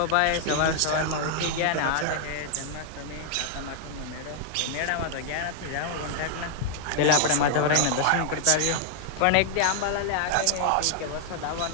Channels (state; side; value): different; both; correlation 0.00